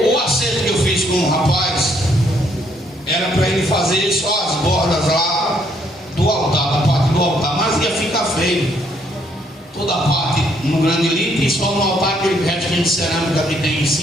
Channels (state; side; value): normal; both; correlation 0.69